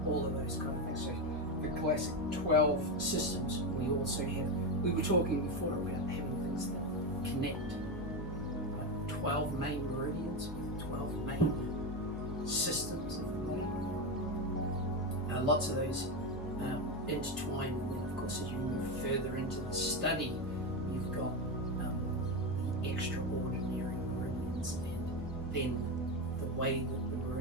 all of those kind of things. So the classic 12 systems. We also have, we were talking before about having things that connect, like 12 main meridians with 12 main systems of the body. Lots of those intertwine, and then of course as you move further into the study, you've got the extraordinary meridians, and then the way that the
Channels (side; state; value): both; normal; correlation 0.13